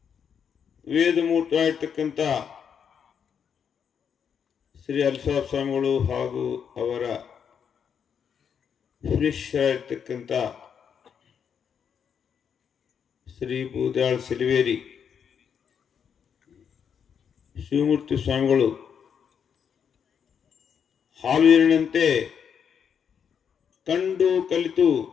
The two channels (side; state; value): right; quieter; 7.5 dB